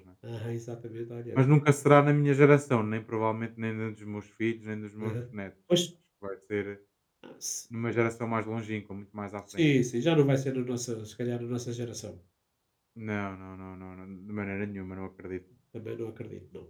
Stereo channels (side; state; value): both; identical; correlation 1.00